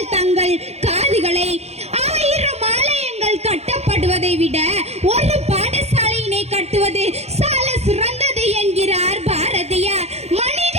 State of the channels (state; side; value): late; left; 0.31 ms